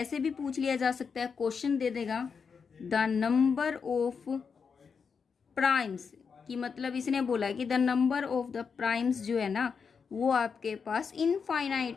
भी पूछ लिया जा सकता है, क्वेश्चन दे देगा द नंबर ऑफ प्राइम्स, कि मतलब इसने बोला कि the number of the primes जो है ना वो आपके पास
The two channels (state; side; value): quieter; right; 5.9 dB